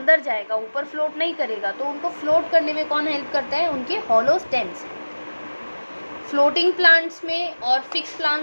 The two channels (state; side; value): inverted; both; correlation -1.00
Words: जाएगा, ऊपर फ्लोट नहीं करेगा। तो उनको फ्लोट करने में कौन हेल्प करता है, उनके हॉलो स्टेम्स। फ्लोटिंग प्लांट्स में और फिक्स